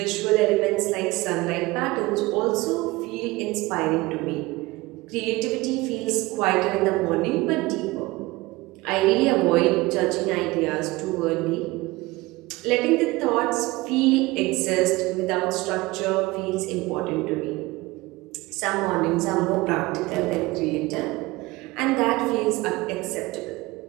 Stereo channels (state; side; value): quieter; left; 21.1 dB